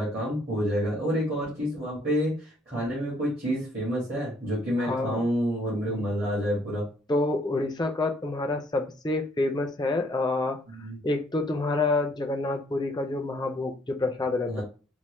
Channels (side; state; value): both; normal; correlation 0.65